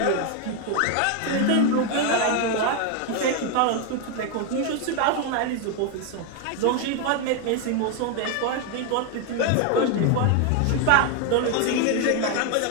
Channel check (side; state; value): both; different; correlation 0.01